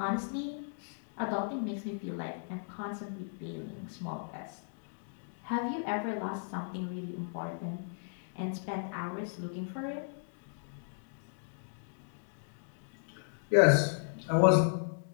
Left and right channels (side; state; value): right; silent; digital silence